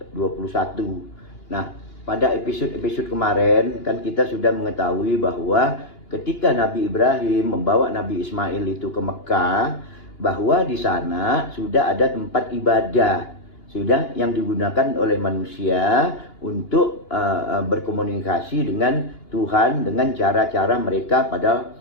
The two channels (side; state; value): right; late; 2.9 ms